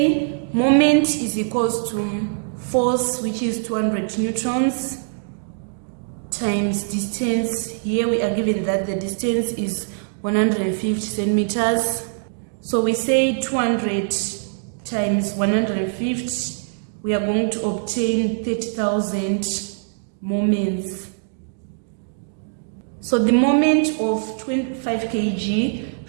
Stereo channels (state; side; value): silent; left; digital silence